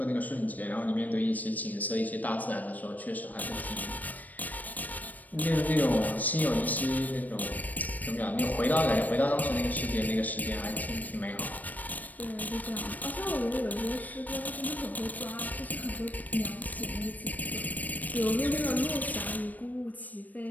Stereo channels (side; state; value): right; late; 0.082 ms